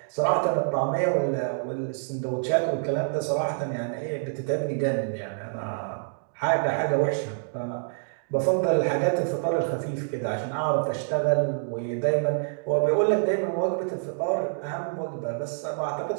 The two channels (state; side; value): silent; left; digital silence